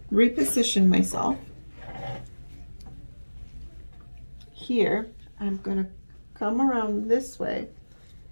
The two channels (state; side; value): inverted; both; correlation -1.00